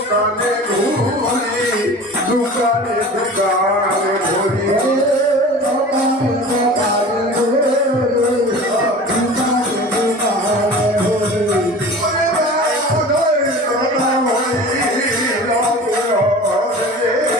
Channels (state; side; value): normal; both; correlation 0.38